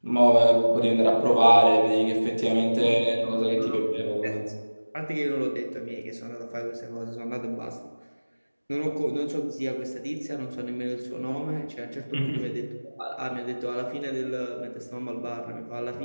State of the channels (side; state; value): both; inverted; correlation -1.00